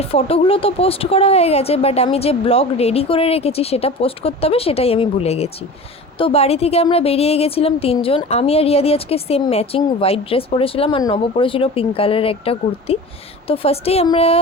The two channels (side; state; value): both; normal; correlation 0.35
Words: ফটোগুলো তো পোস্ট করা হয়ে গেছে, বাট আমি যে ব্লগ রেডি করে রেখেছি সেটা পোস্ট করতে হবে, সেটাই আমি ভুলে গেছি। তো বাড়ি থেকে আমরা বেরিয়ে গেছিলাম তিনজন, আমি আর রিয়াদি আজকে সেম ম্যাচিং হোয়াইট ড্রেস পরেছিলাম, আর নব পরেছিল পিঙ্ক কালারের একটা কুর্তি। তো ফার্স্টেই আমরা